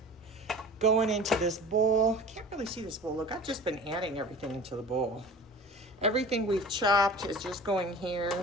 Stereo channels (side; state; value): both; normal; correlation 0.40